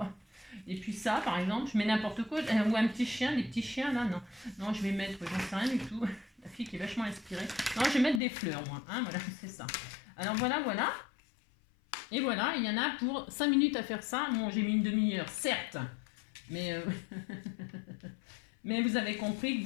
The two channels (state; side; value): drops out; right; at 8.2 s